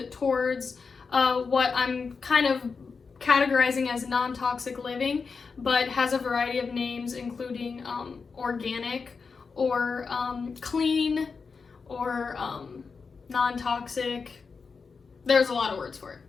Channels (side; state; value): right; quieter; 5.0 dB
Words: towards what I'm kind of categorizing as non-toxic living, but has a variety of names, including organic, or clean, or non-toxic. There's a lot of words for it.